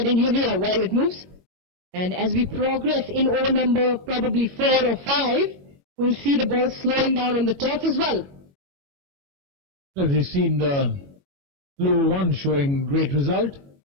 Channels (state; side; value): late; left; 21 ms